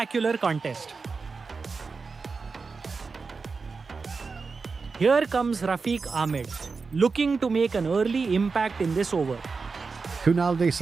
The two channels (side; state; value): left; quieter; 4.6 dB